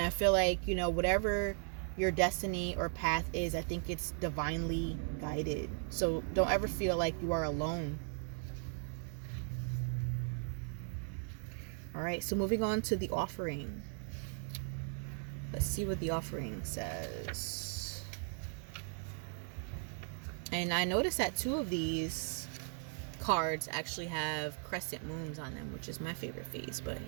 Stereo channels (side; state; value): left; silent; 53 dB below the other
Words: I feel like, whatever your destiny or path is, I think it's divinely guided. So don't ever feel like you are alone. All right, so moving on to the offering. Let's see what the offering says. And I noticed that 2 of these cards actually have crescent moons on them, which is my favorite phase. But